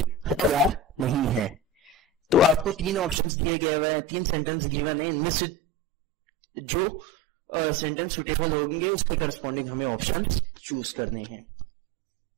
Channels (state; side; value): drops out; left; at 3.2 s